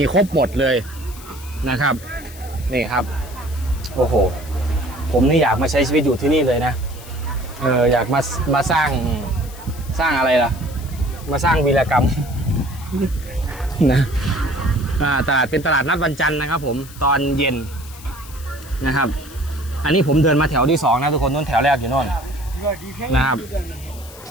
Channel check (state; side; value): noise; left; hiss, 18 dB below the sound